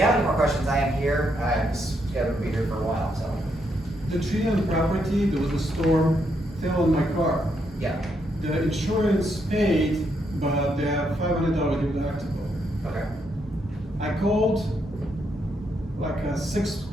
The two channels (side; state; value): both; normal; correlation 0.77